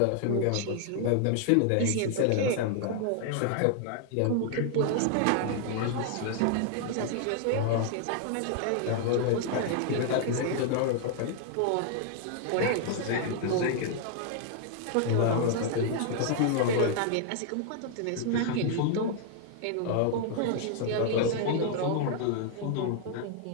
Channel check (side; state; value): both; different; correlation 0.00